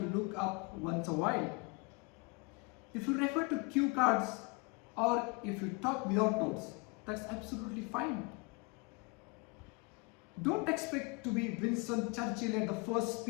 up once a while. If you refer to cue cards or if you talk without notes, that's absolutely fine. Don't expect to be Winston Churchill at the first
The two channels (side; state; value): right; quieter; 29.3 dB